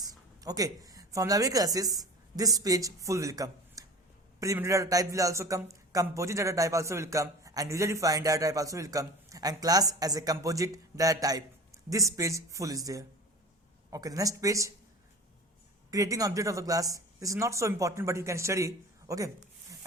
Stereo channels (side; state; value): both; normal; correlation 0.37